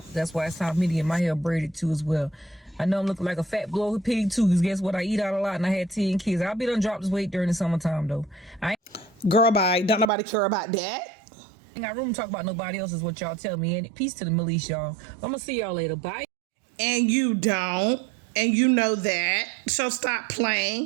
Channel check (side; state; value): left; drops out; at 10.1 s